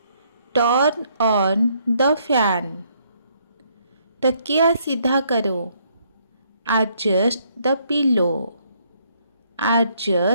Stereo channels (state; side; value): inverted; both; correlation -0.69